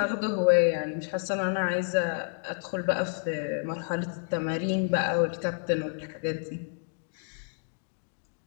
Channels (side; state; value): right; silent; 57 dB below the other